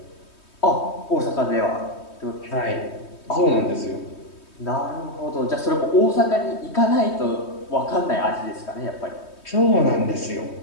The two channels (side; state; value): right; late; 3.2 ms